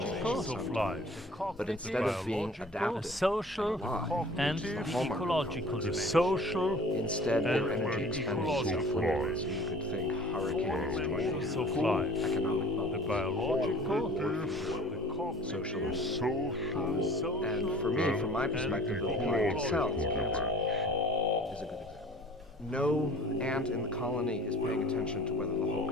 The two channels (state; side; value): normal; both; correlation 0.46